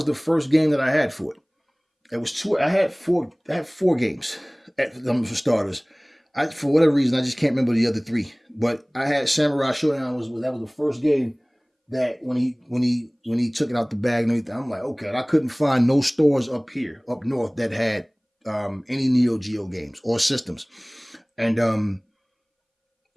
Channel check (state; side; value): identical; both; correlation 1.00